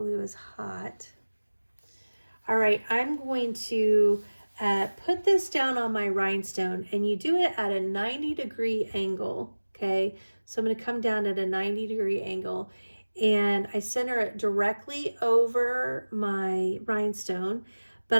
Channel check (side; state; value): both; inverted; correlation -1.00